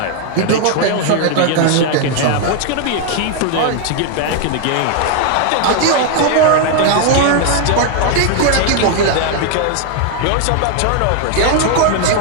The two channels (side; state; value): both; different; correlation 0.00